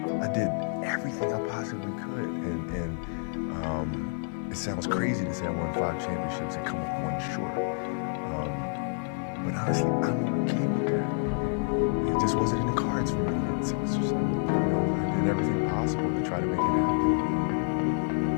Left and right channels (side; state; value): right; silent; digital silence